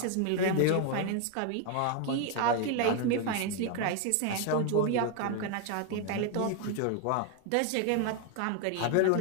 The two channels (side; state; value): both; different; correlation 0.01